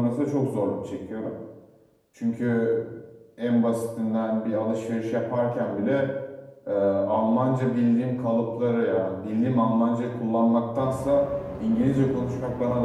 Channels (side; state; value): both; identical; correlation 1.00